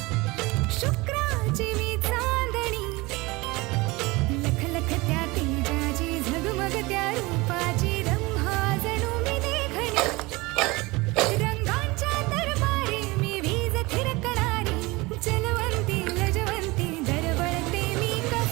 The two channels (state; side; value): quieter; left; 23.0 dB